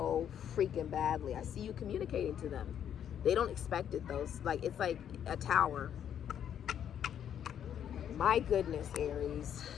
freaking badly. I see you communicating to them. They don't expect it though. Like, it's like a tower. My goodness, Aries,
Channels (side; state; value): right; quieter; 9.4 dB